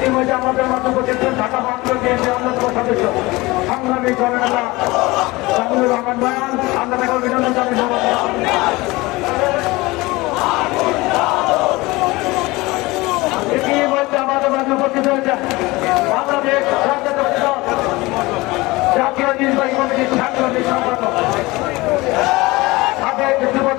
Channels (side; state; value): right; quieter; 21.7 dB